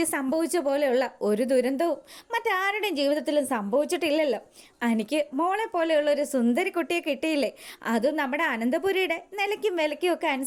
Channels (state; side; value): identical; both; correlation 1.00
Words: സംഭവിച്ച പോലെയുള്ള ഒരു ദുരന്തവും മറ്റാരുടെയും ജീവിതത്തിലും സംഭവിച്ചിട്ടില്ലല്ലോ. എനിക്ക് മോളെ പോലെയുള്ള ഒരു സുന്ദരി കുട്ടിയെ കിട്ടിയില്ലേ, അതും നമ്മുടെ അനന്തപുരിയുടെ നിലയ്ക്കും വിലയ്ക്കും ഒക്കെ